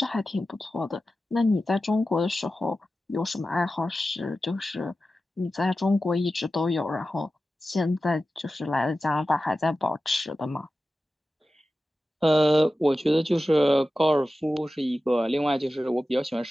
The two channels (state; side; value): normal; both; correlation 0.94